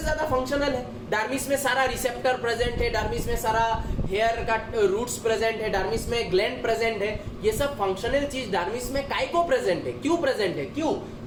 ज्यादा फंक्शनल है। डर्मिस में सारा रिसेप्टर प्रेजेंट है, डर्मिस में सारा हेयर का रूट्स प्रेजेंट है, डर्मिस में ग्लैंड प्रेजेंट है। ये सब फंक्शनल चीज डर्मिस में काय को प्रेजेंट है? क्यों प्रेजेंट है? क्यों?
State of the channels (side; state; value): both; identical; correlation 1.00